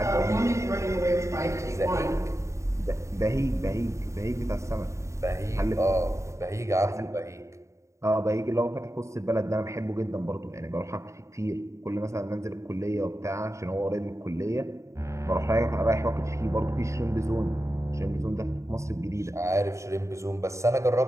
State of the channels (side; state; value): left; late; 0.14 ms